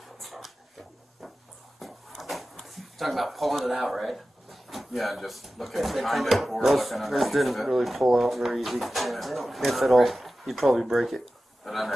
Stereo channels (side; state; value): both; normal; correlation 0.95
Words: Talking about pulling it out, right? Yeah, just looking They behind come it or Those looking those underneath didn't it. really pull out very easy. Yeah, they don't If at all, you'd probably break it. But